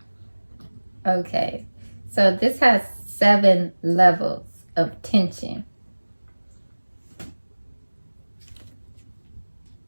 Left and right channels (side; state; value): both; inverted; correlation -1.00